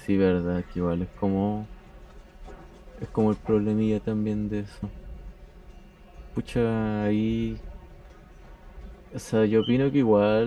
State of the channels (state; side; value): identical; both; correlation 1.00